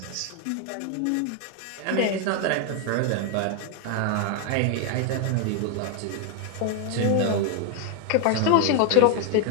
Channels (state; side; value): different; both; correlation 0.00